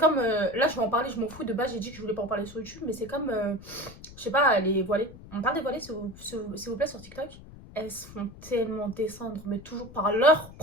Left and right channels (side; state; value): left; noise; rumble, 18 dB below the sound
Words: là, je vais en parler, je m'en fous. De base, j'ai dit que je voulais pas en parler sur YouTube, mais c'est comme, je sais pas, les voilées. On parle des voilées, s'il vous plaît, sur TikTok. Elles se font tellement descendre, mais toujours par leur